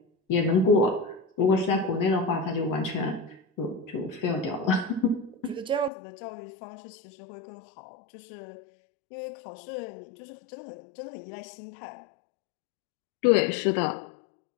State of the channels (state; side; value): drops out; right; at 5.9 s